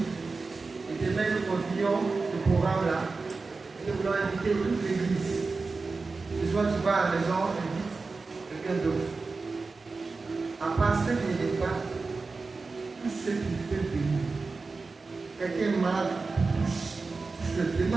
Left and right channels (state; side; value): quieter; left; 4.0 dB